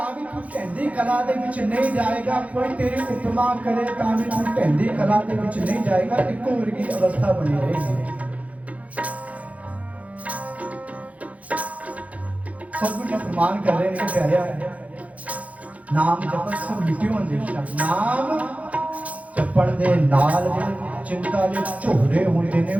भी तू ढैंदी कला दे विच नहीं जाएगा, कोई तेरी उपमा करे तां भी तू ढैंदी कला दे विच नहीं जाएगा, इको वर्गी अवस्था बनी रहेगी। सतगुरु जी फरमान कर रहे हैं प्यारे, नाम जपत सब मिट्टियों अंदेशा, नाम जपण दे नाल चिंता दे झोरे होंदे ने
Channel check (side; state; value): left; late; 0.068 ms